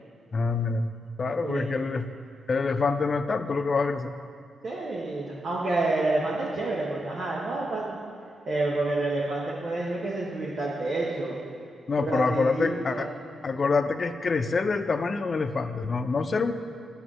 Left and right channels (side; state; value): both; normal; correlation 0.86